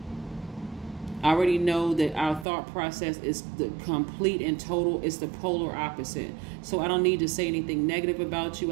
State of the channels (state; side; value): drops out; left; at 2.5 s